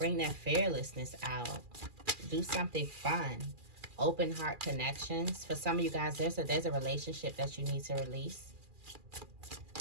that fearlessness out. Do something fun. Open heart connections. For some of you guys, there's a relationship that you need to release.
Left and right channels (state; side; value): late; left; 2.4 ms